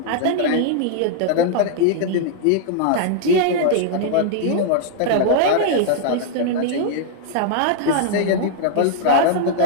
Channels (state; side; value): different; both; correlation 0.00